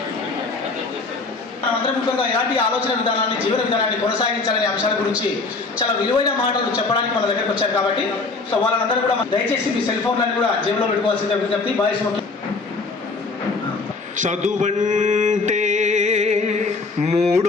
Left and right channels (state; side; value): quieter; right; 3.9 dB